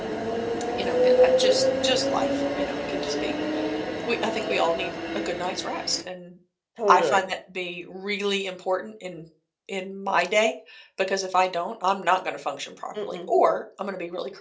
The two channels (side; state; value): both; identical; correlation 1.00